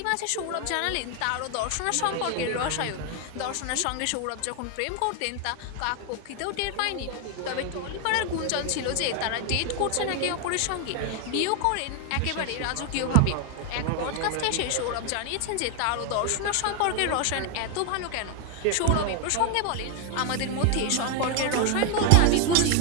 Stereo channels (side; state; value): both; different; correlation 0.01